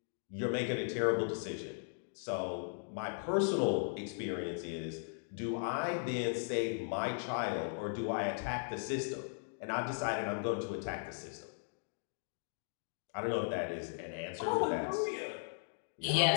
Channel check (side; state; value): right; silent; digital silence